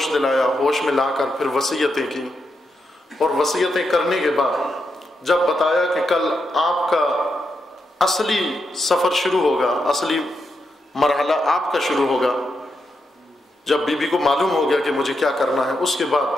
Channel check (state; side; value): normal; both; correlation 0.84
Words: دلایا، ہوش میں لا کر پھر وصیتیں کی، اور وصیتیں کرنے کے بعد جب بتایا کہ کل آپ کا اصلی سفر شروع ہوگا، اصلی مرحلہ آپ کا شروع ہوگا، جب بی بی کو معلوم ہو گیا کہ مجھے کیا کرنا ہے، اس کے بعد